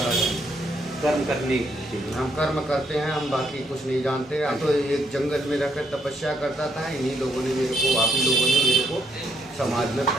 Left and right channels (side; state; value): both; normal; correlation 0.74